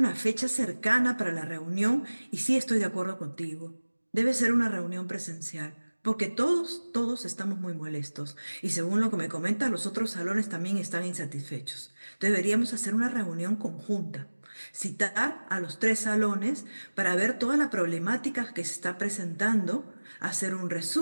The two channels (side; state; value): both; inverted; correlation -1.00